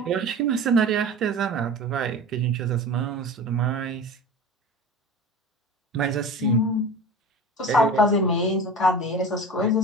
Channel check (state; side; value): normal; both; correlation 0.34